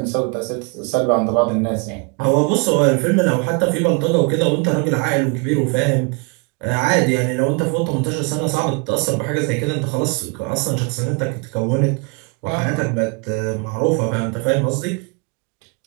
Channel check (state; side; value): quieter; left; 32.2 dB